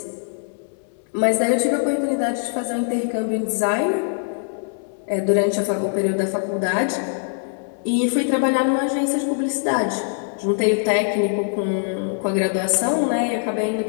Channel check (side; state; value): right; silent; digital silence